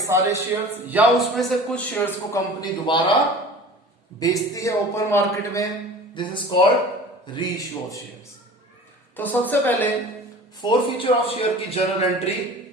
सारे शेयर्स या उसमें से कुछ शेयर्स को कंपनी दोबारा बेचती है ओपन मार्केट में। दिस इज कॉल्ड री इश्यू ऑफ शेयर्स। तो सबसे पहले 4 फीचर ऑफ शेयर की जनरल एंट्री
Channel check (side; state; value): both; normal; correlation 0.41